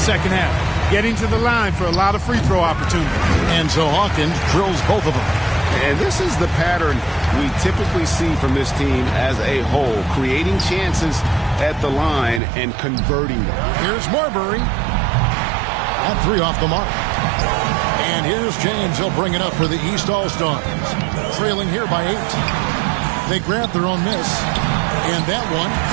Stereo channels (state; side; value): drops out; left; at 12.4 s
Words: half. Getting to the line for a lot of free throw opportunities. And so Hawkins drills both of them. And this is the pattern we typically see from this team as a whole. Creating chances at the line and converting them. Here's Marbury. That 3 off the mark. And here's James. He'll bring it up for the East All-Stars. Trailing here by 8. They grab their own miss. And that one,